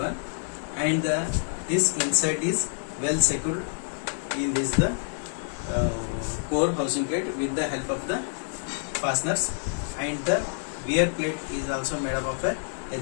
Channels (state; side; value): silent; right; digital silence